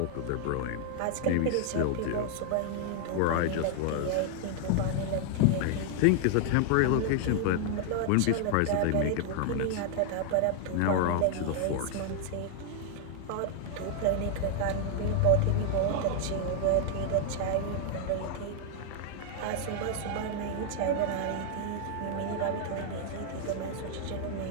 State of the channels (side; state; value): both; different; correlation 0.00